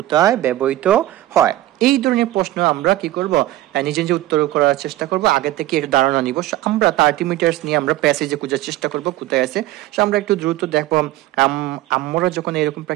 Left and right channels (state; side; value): quieter; left; 15.5 dB